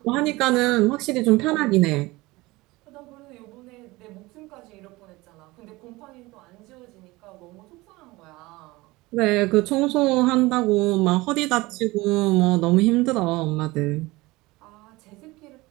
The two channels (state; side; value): quieter; left; 21.2 dB